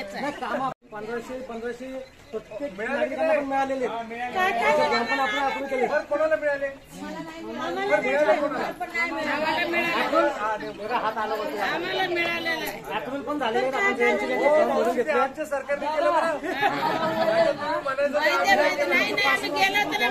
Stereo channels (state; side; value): identical; both; correlation 1.00